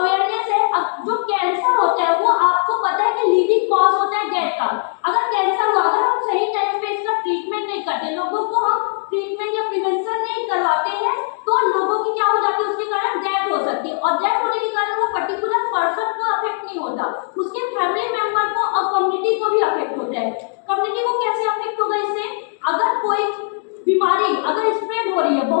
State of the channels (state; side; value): silent; right; digital silence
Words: है, जो कैंसर होता है वो आपको पता है कि लीडिंग कॉज होता है डेथ का। अगर कैंसर हुआ, अगर हम सही टाइम पे इसका ट्रीटमेंट नहीं करते, लोगों को हम ट्रीटमेंट या प्रिवेंशन नहीं करवाते हैं तो लोगों की क्या हो जाती है, उसके कारण डेथ हो सकती है। और डेथ होने के कारण वो पर्टिकुलर पर्सन को अफेक्ट नहीं होता, उसके फैमिली मेंबर को और कम्युनिटी को भी अफेक्ट होता है। कम्युनिटी को कैसे अफेक्ट होगा इससे, अगर कोई बीमारी अगर स्प्रेड हो रही है